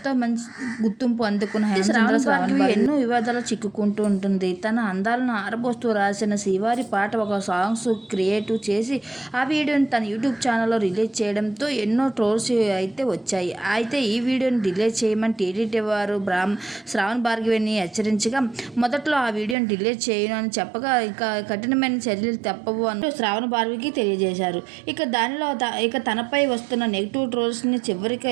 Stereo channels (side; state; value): left; drops out; at 19.6 s